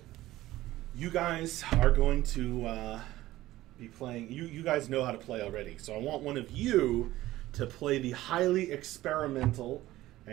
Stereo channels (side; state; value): left; quieter; 16.1 dB